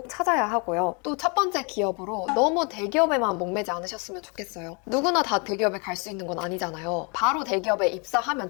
찾아야 하고요. 또 첫 번째 기업으로 너무 대기업에만 목매지 않으셨으면 좋겠어요. 누구나 다 대기업에 갈 수 있는 건 아니잖아요. 바로 대기업에 입사하면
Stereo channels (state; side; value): quieter; right; 33.5 dB